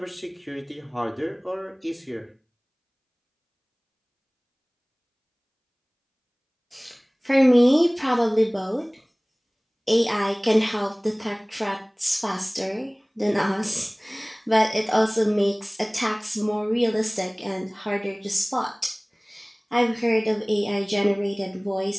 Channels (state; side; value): identical; both; correlation 1.00